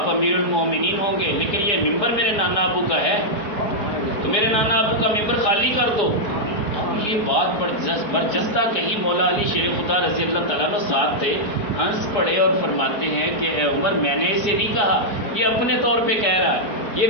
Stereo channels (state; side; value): late; right; 4.9 ms